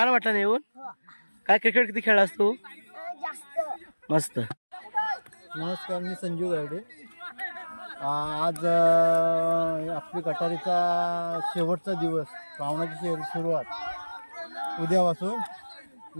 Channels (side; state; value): both; inverted; correlation -1.00